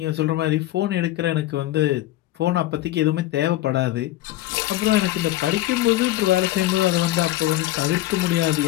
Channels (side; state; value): right; quieter; 15.4 dB